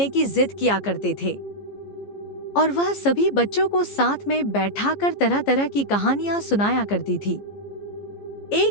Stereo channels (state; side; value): late; right; 14 ms